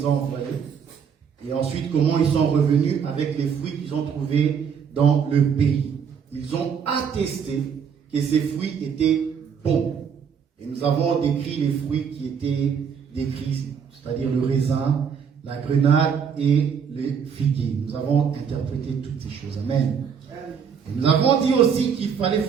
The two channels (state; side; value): quieter; left; 7.1 dB